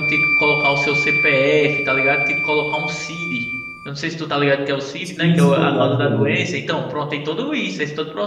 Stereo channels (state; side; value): identical; both; correlation 1.00